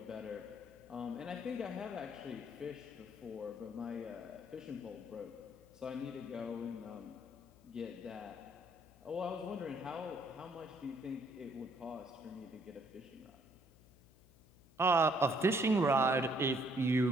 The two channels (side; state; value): left; noise; hum, 25 dB below the sound